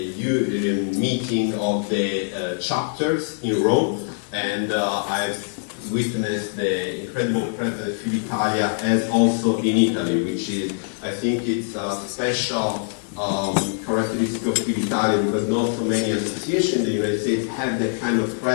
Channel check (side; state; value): right; silent; digital silence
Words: meeting of the chapters in Rome, and I've witnessed the incredible presence of Filitalia as also in Italy, which is, I think it's a special characteristic of Filitalia, because not so many associations in the United States have that kind of